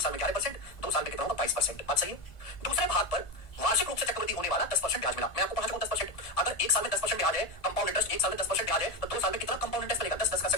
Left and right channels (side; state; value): right; late; 1.5 ms